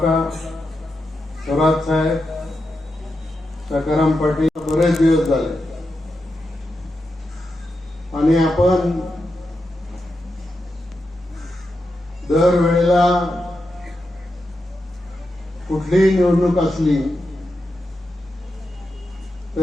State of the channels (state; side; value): normal; both; correlation 0.87